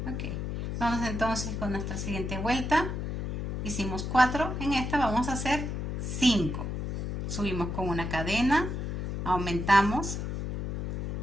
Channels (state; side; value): noise; left; hum, 3 dB below the sound